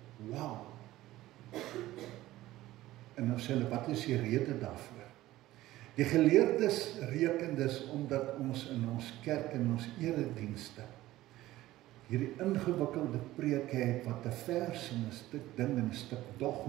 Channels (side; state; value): left; quieter; 16.1 dB